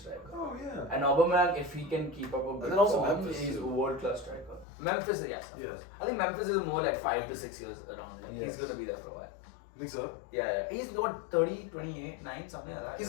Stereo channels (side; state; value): right; drops out; at 4.7 s